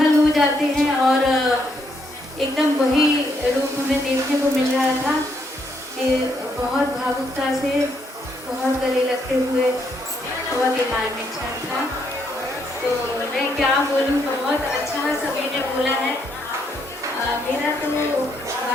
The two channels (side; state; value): both; normal; correlation 0.74